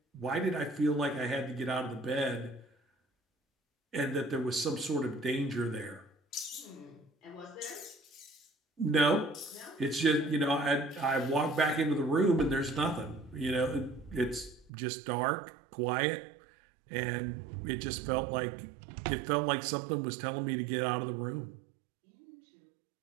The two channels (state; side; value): drops out; left; at 14.7 s